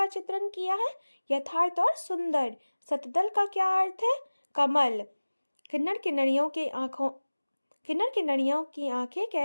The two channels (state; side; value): inverted; both; correlation -1.00